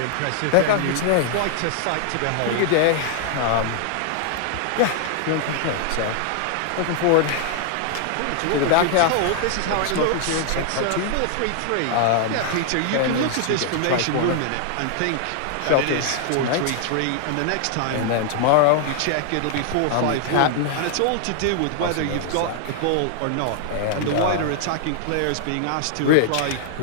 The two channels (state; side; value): different; both; correlation 0.00